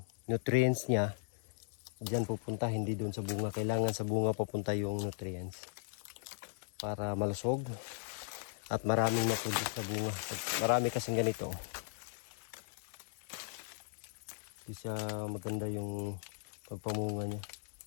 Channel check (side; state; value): right; silent; 53 dB below the other